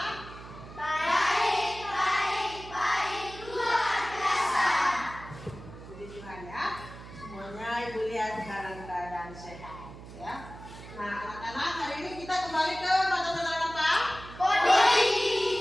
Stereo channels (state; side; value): noise; right; hum, 15 dB below the sound